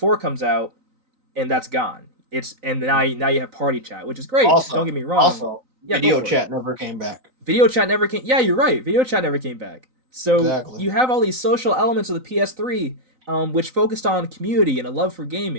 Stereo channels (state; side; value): late; left; 3.9 ms